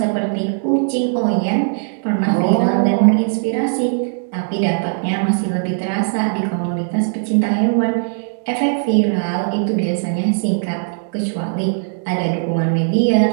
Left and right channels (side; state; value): left; silent; 67 dB below the other